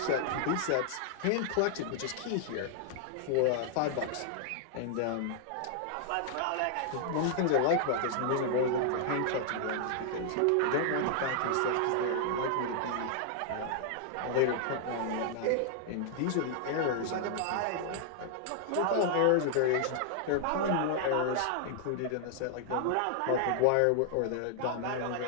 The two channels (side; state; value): both; different; correlation -0.01